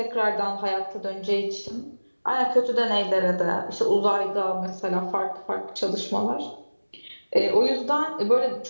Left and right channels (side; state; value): both; inverted; correlation -1.00